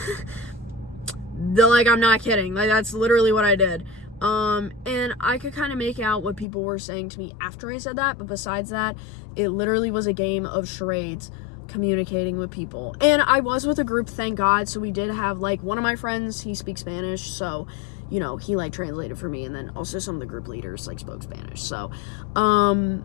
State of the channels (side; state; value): right; drops out; at 6.5 s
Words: I'm not kidding. That's literally what I did. And I could kind of make out what people were saying to me after I said that, but besides that, it literally was a game of charades communicating with people. And I was with a group, thank God, so we did have, one of my friends, he speaks Spanish, so, he, translated for me, and then also some of the group leaders, spoke Spanish, so,